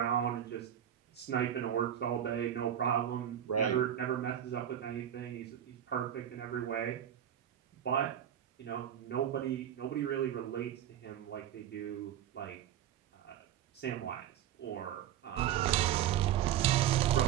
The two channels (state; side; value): quieter; left; 10.6 dB